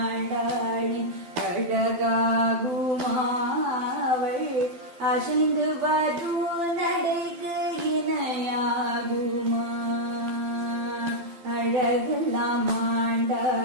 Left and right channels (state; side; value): late; left; 12 ms